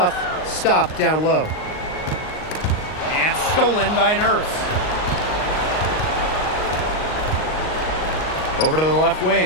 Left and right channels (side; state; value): right; late; 38 ms